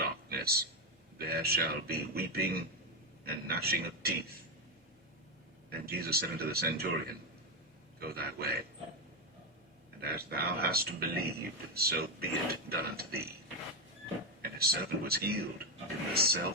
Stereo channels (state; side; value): normal; both; correlation 0.08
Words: There shall be weeping and gnashing of teeth. And Jesus said unto the centurion, Go thy way, and as thou hast believed, so be it done unto thee. And his servant was healed in the